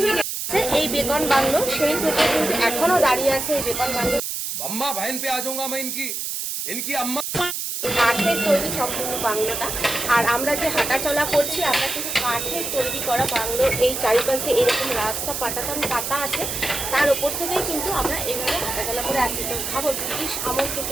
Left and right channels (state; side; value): noise; right; hiss, 3 dB below the sound